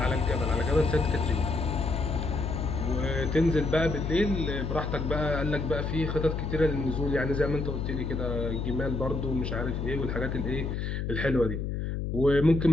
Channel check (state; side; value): noise; left; hum, 2 dB below the sound